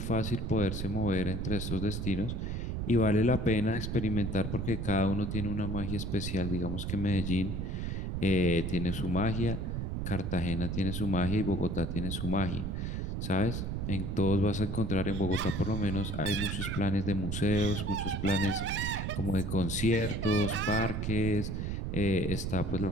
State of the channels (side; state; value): right; noise; rumble, 3 dB below the sound